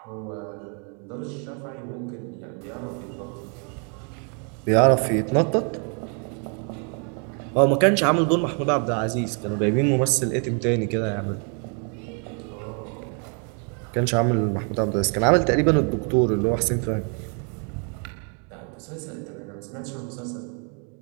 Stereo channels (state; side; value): quieter; left; 39.5 dB